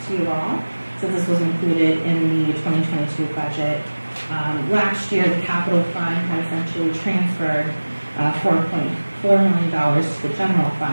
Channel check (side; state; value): both; inverted; correlation -1.00